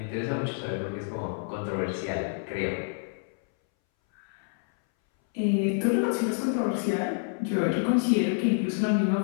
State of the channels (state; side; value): silent; right; 59 dB below the other